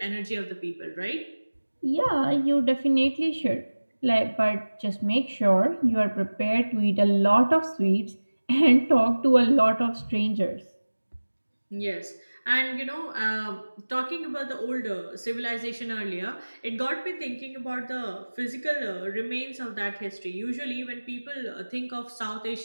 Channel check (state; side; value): inverted; both; correlation -1.00